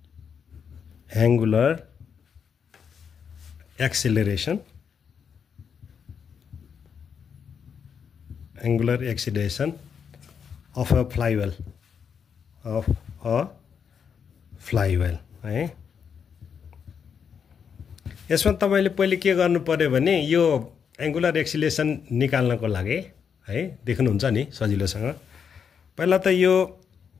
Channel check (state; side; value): quieter; right; 7.0 dB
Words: of a flywheel है। यसमा तपाईले पहिले के गर्नु पर्यो भने यो एङ्गुलर एक्सिलेरेसन निकाल्नको लागि है, देख्नुहुन्छ नि सजिलोसँग। पहिला त यो